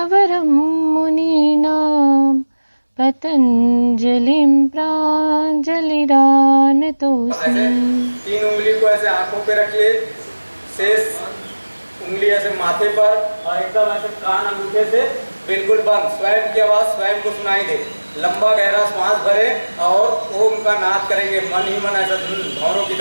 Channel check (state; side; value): inverted; both; correlation -1.00